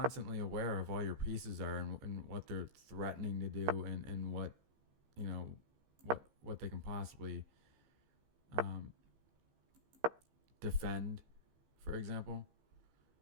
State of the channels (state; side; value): late; left; 15 ms